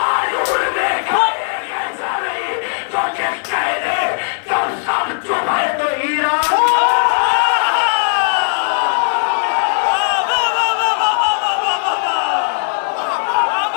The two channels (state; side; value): silent; right; digital silence